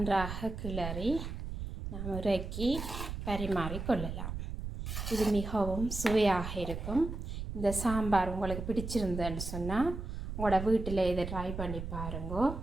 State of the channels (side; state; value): right; noise; rumble, 6 dB below the sound